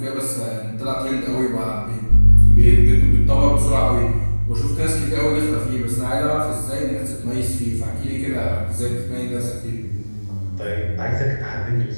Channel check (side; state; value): both; inverted; correlation -1.00